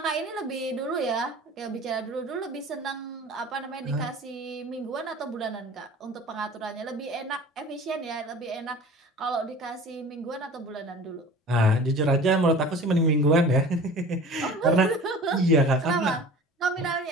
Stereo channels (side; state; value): both; normal; correlation 0.41